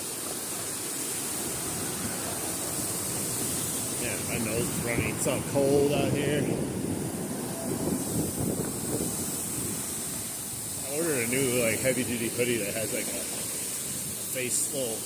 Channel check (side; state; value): both; identical; correlation 1.00